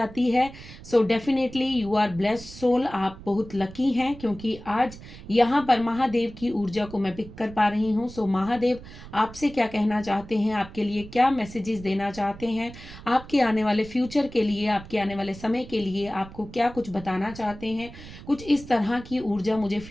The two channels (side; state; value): right; noise; rumble, 16 dB below the sound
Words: है, so definitely you are blessed soul. आप बहुत लकी हैं क्योंकि आज यहाँ पर महादेव की ऊर्जा को मैं पिक कर पा रही हूँ। सो महादेव आपसे क्या कहना चाहते हैं, आपके लिए क्या मैसेजेस देना चाहते हैं, आपके आने वाले फ्यूचर के लिए, आपके आने वाले समय के लिए आपको क्या कुछ बताना चाहते हैं, कुछ इस तरह की ऊर्जा मुझे